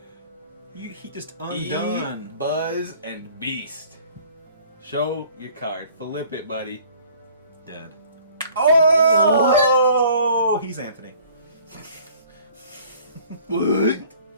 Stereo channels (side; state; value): both; inverted; correlation -0.53